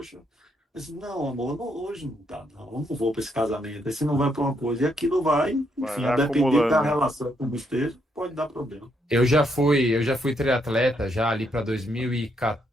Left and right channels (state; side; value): normal; both; correlation 0.75